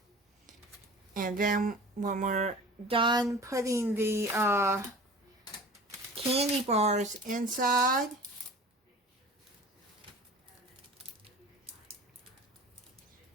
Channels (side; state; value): both; normal; correlation 0.41